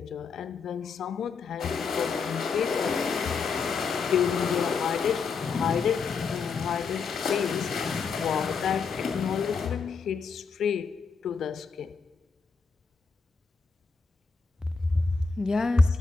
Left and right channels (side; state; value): right; quieter; 5.1 dB